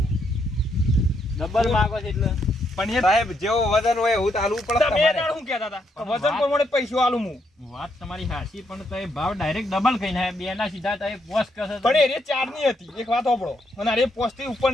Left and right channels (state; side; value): normal; both; correlation 0.77